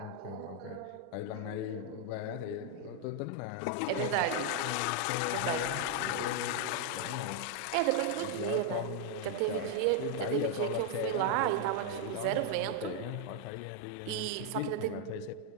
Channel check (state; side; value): different; both; correlation 0.00